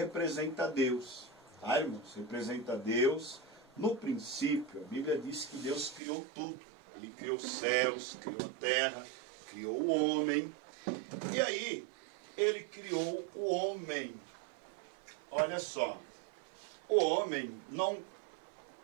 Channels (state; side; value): drops out; left; at 6.0 s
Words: Deus, tá, irmãos? Representa Deus. No princípio, a Bíblia diz que Deus criou tudo. Ele criou os céus, criou a terra, criou o homem. E aí, ele criou o homem. Olha só, o homem não